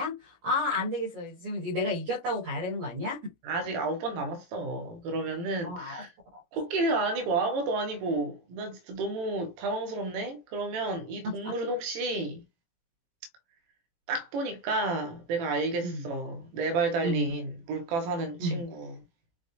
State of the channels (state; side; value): late; left; 17 ms